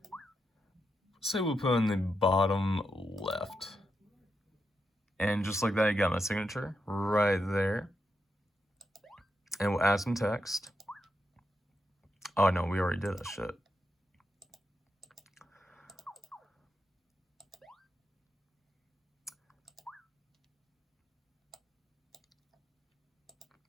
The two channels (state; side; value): normal; both; correlation 0.84